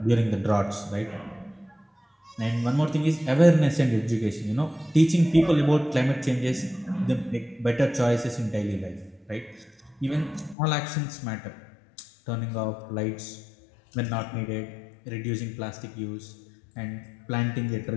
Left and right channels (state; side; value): drops out; right; at 10.6 s